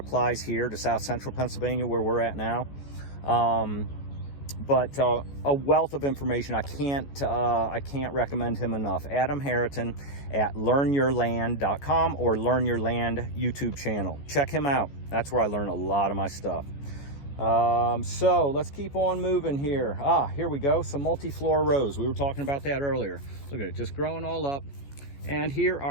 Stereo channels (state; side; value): late; right; 14 ms